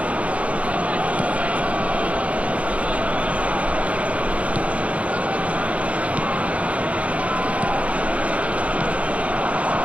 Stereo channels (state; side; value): late; left; 0.065 ms